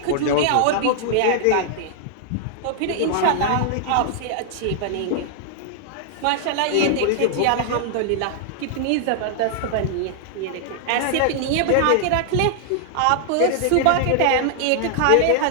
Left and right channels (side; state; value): both; different; correlation -0.01